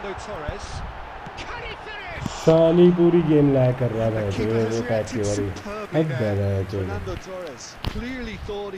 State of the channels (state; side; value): identical; both; correlation 1.00